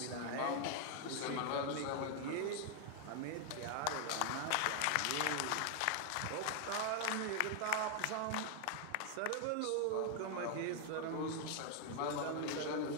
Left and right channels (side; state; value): both; different; correlation 0.00